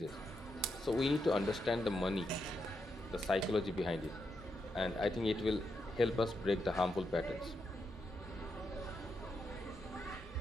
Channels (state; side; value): normal; both; correlation 0.83